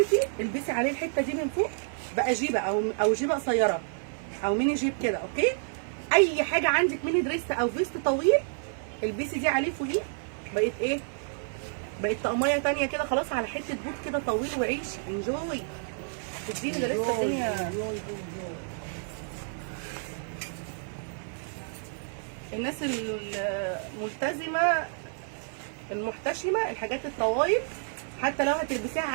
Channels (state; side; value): silent; left; digital silence